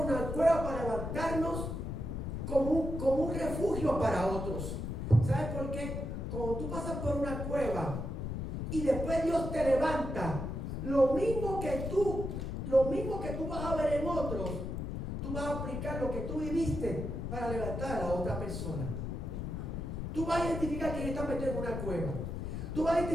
una cueva para levantarnos como un refugio para otros. ¿Sabes por qué? Cuando tú pasas por una cueva y después Dios te levanta, lo mismo que tú vas a ver en otros, tú vas a aplicar lo que tú viviste para levantar a la otra persona. Tú vas a identificar quién está metido en una cueva. Tú vas a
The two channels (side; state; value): left; noise; rumble, 4 dB below the sound